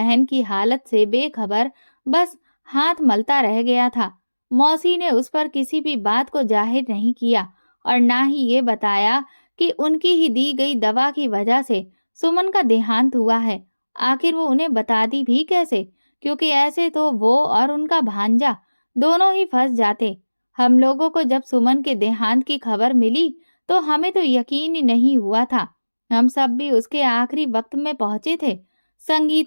की हालत से बेखबर बस हाथ मलता रह गया था। मौसी ने उस पर किसी भी बात को जाहिर नहीं किया और ना ही ये बताया कि उनकी ही दी गई दवा की वजह से सुमन का देहांत हुआ है। आखिर वो उन्हें बताती भी कैसे, क्योंकि ऐसे तो वो और उनका भांजा दोनों ही फंस जाते। हम लोगों को जब सुमन के देहांत की खबर मिली तो हमें तो यकीन ही नहीं हुआ था। हम सब भी उसके आखिरी वक्त में पहुंचे थे।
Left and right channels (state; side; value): inverted; both; correlation -1.00